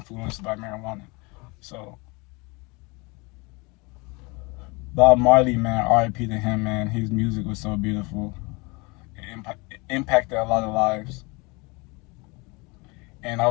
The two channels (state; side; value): quieter; right; 27.5 dB